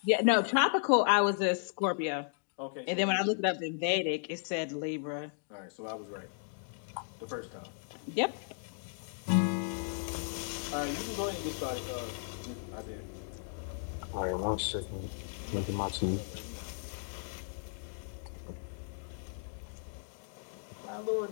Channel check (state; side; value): silent; right; digital silence